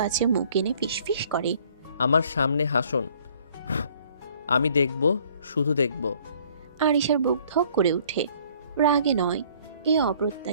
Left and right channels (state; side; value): inverted; both; correlation -0.58